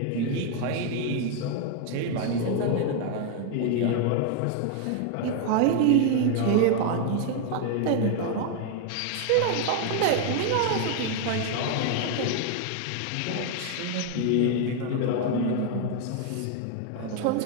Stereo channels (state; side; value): different; both; correlation 0.00